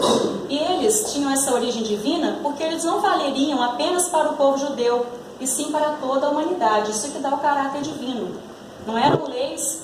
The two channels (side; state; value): both; identical; correlation 1.00